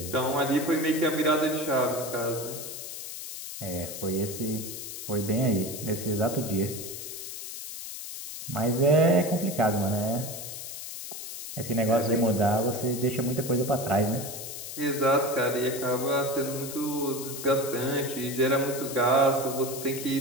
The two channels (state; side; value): noise; left; hiss, 9 dB below the sound